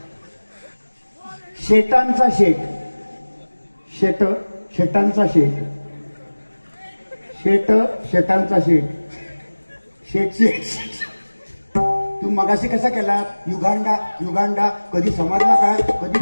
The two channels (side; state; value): both; inverted; correlation -1.00